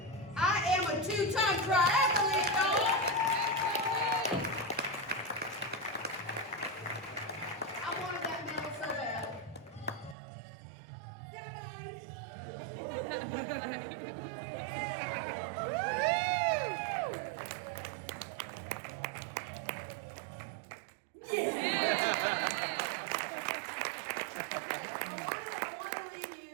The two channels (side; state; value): left; drops out; at 10.2 s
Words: I am a 2-time triathlete, y'all. I wanted that medal so bad.